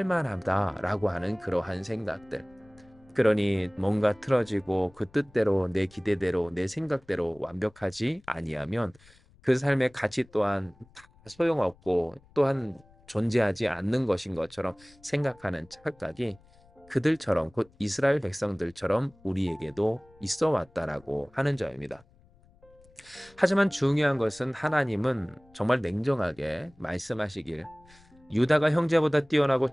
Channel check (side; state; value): left; noise; rumble, 28 dB below the sound